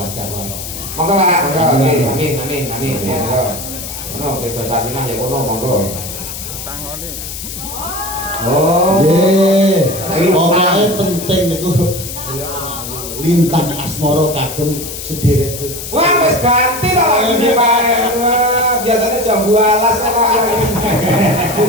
warahmah. Monggo Pak, monggo. Amin. Monggo. Ono sing dosa dinah ya kono monggo. Sangone. Oh. Nggih. Pokoke penting niku lintang asmara kagem sedherek. Wah, wis ganti to lagune Pak. Wah, biasanya jam 12 kok.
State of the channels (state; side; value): noise; left; hiss, 9 dB below the sound